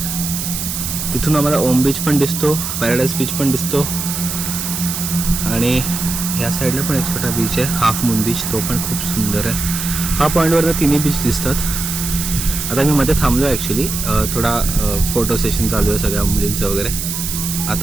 तिथून आम्हाला ओम बीच पण दिसतो, पॅराडाईज बीच पण दिसतो, आणि ह्या साईडला पण एक छोटा बीच आहे, हाफ मून बीच, तो पण खूप सुंदर आहे. हा पॉईंटवर तिन्ही बीच दिसतात. आता मी मध्ये थांबलो ॲक्च्युली, थोडा फोटो सेशन चालू आहे सगळ्या मुलींचं वगैरे.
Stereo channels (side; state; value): right; noise; hiss, 4 dB below the sound